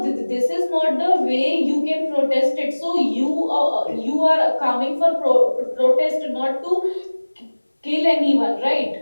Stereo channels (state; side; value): inverted; both; correlation -1.00